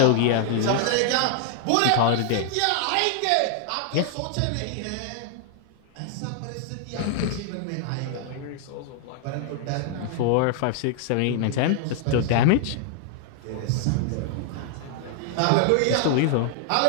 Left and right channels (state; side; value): different; both; correlation 0.00